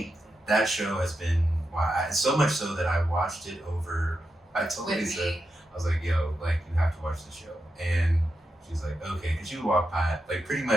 that show has been, so much so that I watched it over, I told Lisa, I was like, yo, like, you have to watch the show. And she's like, okay, because you walk by, like, pretty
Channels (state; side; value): normal; both; correlation 0.87